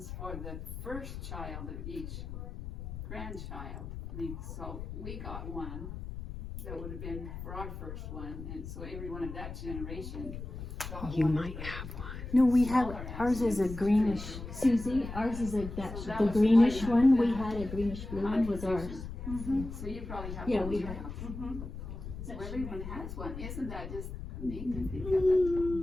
for the first child of each grandchild. So we got one that would have been for our first one, and so everyone of that generation got You one. might have one. No, we have, ours is a greenish, Susie, ours is like that, the greenish one, we had a greenish blue one was ours. So you probably have Yeah, one. we too. have. So everyone has one. Isn't that just neat to think of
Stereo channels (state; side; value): noise; left; rumble, 9 dB below the sound